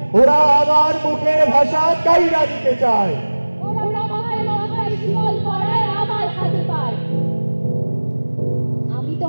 ওরা আমার মুখের ভাষা কাইরা নিতে চায়। আমি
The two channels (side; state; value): both; inverted; correlation -1.00